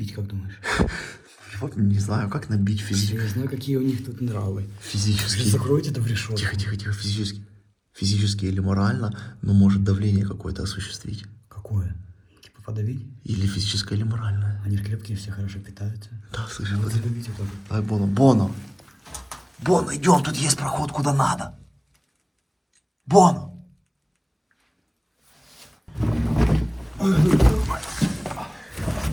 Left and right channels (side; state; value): both; identical; correlation 1.00